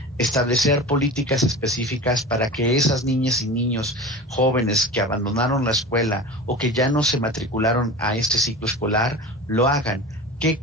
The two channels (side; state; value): both; normal; correlation 0.32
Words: establecer políticas específicas para que esas niñas y niños jóvenes que abandonaron la escuela o que ya no se matricularon a este ciclo escolar, lo hagan. ¿Qué